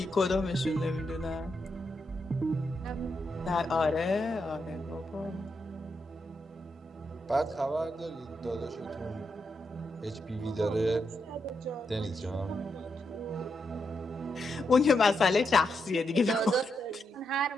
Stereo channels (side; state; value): both; normal; correlation 0.83